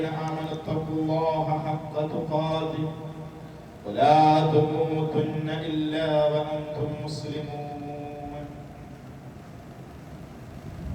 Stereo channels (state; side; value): identical; both; correlation 1.00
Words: آمنوا اتقوا الله حق تقاته ولا تموتن إلا وأنتم مسلمون